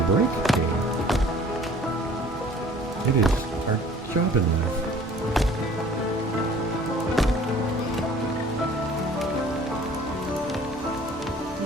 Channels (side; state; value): both; normal; correlation 0.51